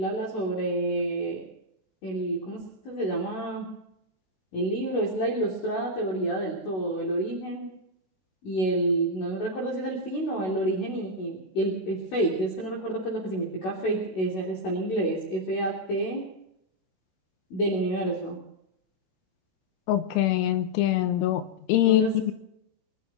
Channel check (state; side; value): late; right; 16 ms